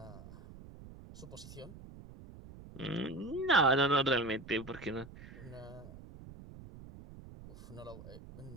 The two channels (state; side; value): noise; right; rumble, 16 dB below the sound